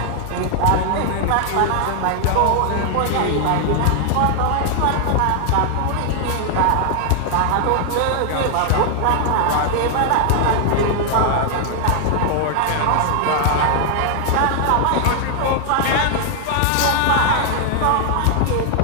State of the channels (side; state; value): both; different; correlation 0.00